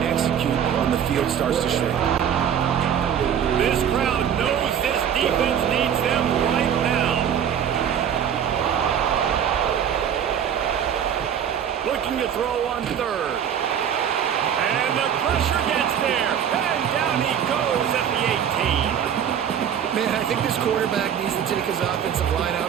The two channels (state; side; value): quieter; left; 8.8 dB